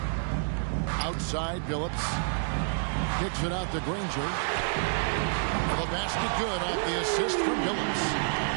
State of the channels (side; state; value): left; silent; digital silence